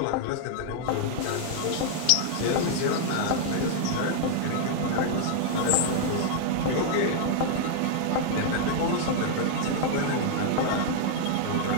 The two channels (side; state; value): both; different; correlation 0.00